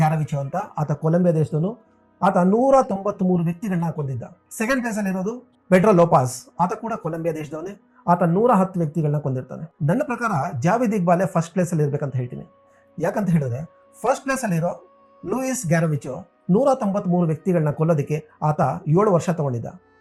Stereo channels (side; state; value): both; identical; correlation 1.00